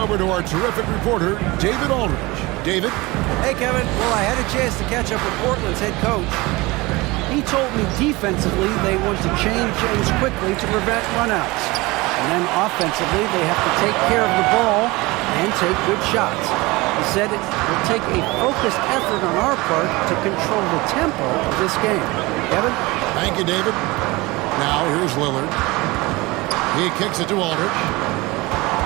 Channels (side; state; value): left; quieter; 22.4 dB